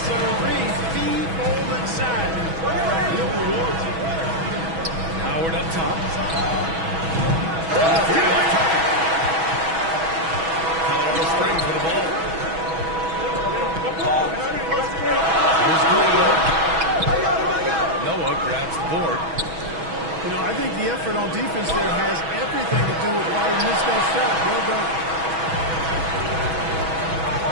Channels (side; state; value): left; late; 6.2 ms